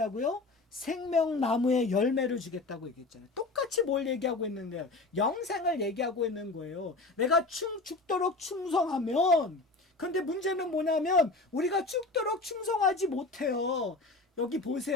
생명나무의 열매를 주겠다고 얘기했잖아요. 똑같이 똑같이 뭘 얘기하고 있는데요? 영생을 얘기하고 있는 거예요. 내가 죽도록 충성하면, 근데 문제는 뭐냐면 우리가 죽도록 충성하지 못해요. 여기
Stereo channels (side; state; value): right; quieter; 3.3 dB